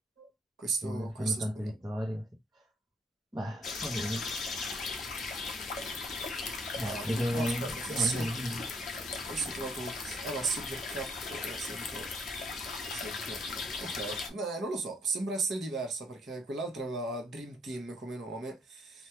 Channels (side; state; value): both; normal; correlation 0.68